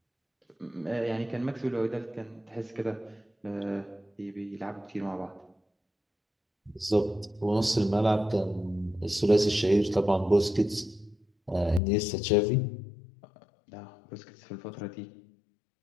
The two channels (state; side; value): drops out; right; at 11.8 s